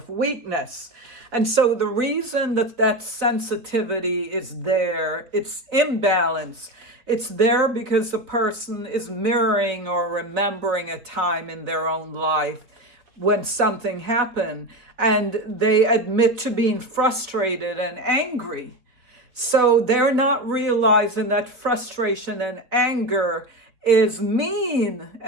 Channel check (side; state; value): left; late; 4.2 ms